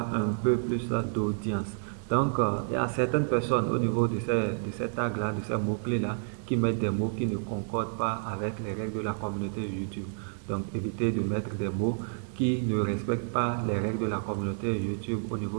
un peu plus d'audience. Donc, il y a certaines personnes au niveau de ces tags-là, de ces mots-clés-là, qui mettent des mots qui ne concordent pas avec les règles de la communauté YouTube. Donc, évitez de mettre des mots qui ne respectent pas les règles de la communauté YouTube au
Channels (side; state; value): left; silent; digital silence